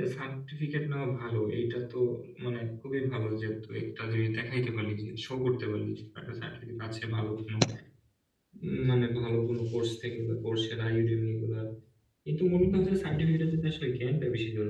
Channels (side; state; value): both; identical; correlation 1.00